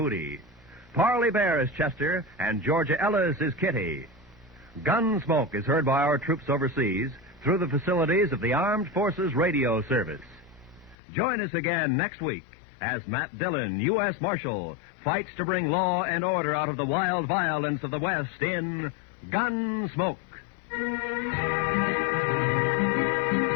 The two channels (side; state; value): right; drops out; at 11.0 s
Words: Parley Bear is Chester, and Georgia Ellis is Kitty. Gunsmoke is heard by our troops overseas through the facilities of the Armed Forces Radio Service. Join us again next week as Matt Dillon, U.S. Marshal, fights to bring law and order out of the wild violence of the West in Gunsmoke.